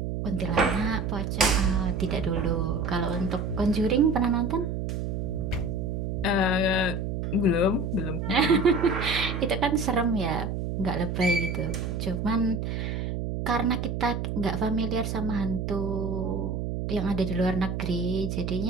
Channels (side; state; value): right; noise; hum, 2 dB below the sound